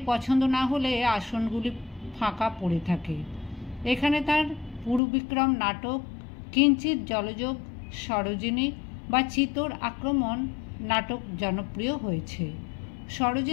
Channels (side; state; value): right; drops out; at 5.0 s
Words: পছন্দ না হলে আসনগুলি ফাঁকা পড়ে থাকে। এখানে তার পুরুবিক্রম নাটক, কিঞ্চিত জলযোগ, সরোজিনী বা চিতোর আক্রমণ নাটক জনপ্রিয় হয়েছে।